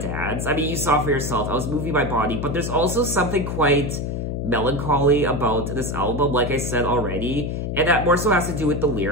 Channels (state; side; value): noise; left; hum, 3 dB below the sound